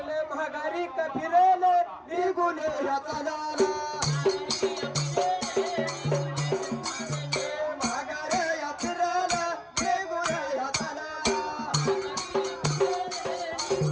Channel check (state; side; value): identical; both; correlation 1.00